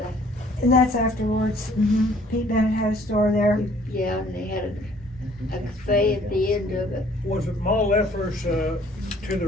a, And that's afterwards. Pete Bennett had a store there. yeah, and they had a cafe at the end of it. Was it Ma Leffler's to the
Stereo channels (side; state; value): both; normal; correlation 0.58